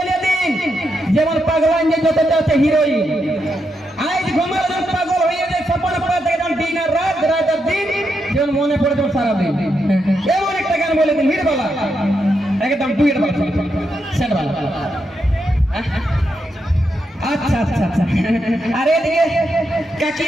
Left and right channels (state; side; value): normal; both; correlation 0.83